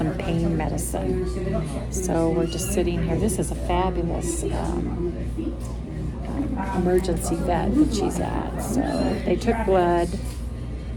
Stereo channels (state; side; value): identical; both; correlation 1.00